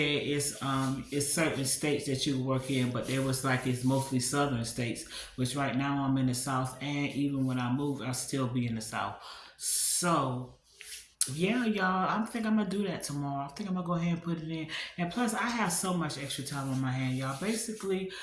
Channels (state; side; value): identical; both; correlation 1.00